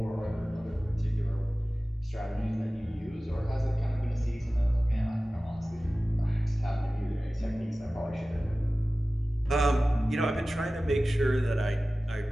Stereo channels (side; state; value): both; normal; correlation 0.96